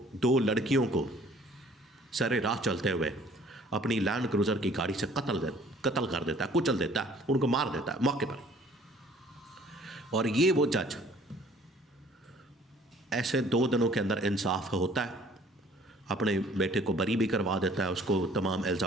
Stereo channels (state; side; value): normal; both; correlation 0.55